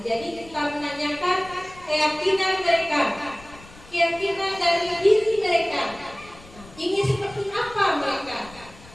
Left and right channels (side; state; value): left; noise; rumble, 21 dB below the sound